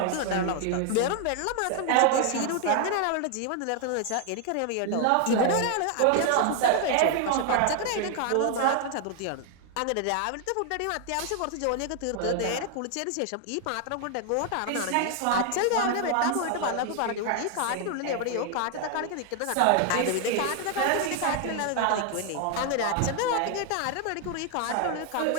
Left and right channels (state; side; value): different; both; correlation 0.00